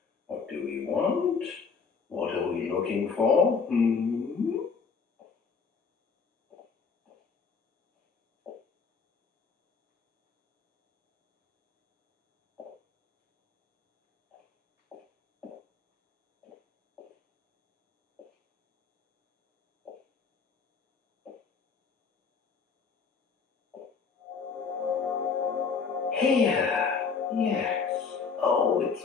What do we want? What are we looking for? Here. Yes. Oh, it's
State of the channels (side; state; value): right; quieter; 5.5 dB